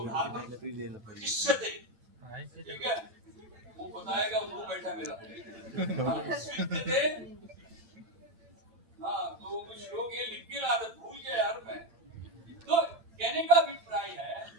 धातु किससे, ठीक है वो बताएगा, मुंह बैठा मेरा। हाँ तो श्लोक ये लिख के ला भूल गया यार मैं। तो कहने का अभिप्राय है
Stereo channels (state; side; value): late; left; 9.0 ms